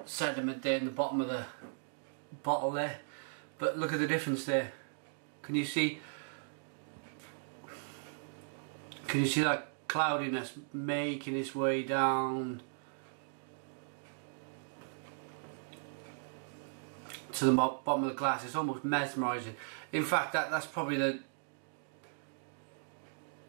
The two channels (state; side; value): silent; left; digital silence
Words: sediment there in the bottom of the bottle there, but look at the difference there. Can you see that cloudiness making its way down to the bottom of the glass? It's almost mesmerising. In fact, that's probably the